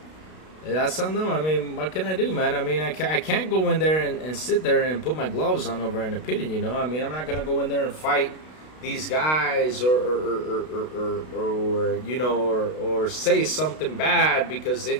That's on them. I mean, what can I do, man? I mean, I can't go in there and sit there and put my gloves on over an opinion, you know? I mean, I'm not going to go in there and fight these guys or you know, or say something bad because they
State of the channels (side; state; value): right; late; 32 ms